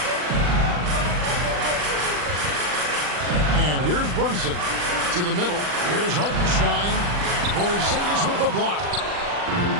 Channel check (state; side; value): late; left; 40 ms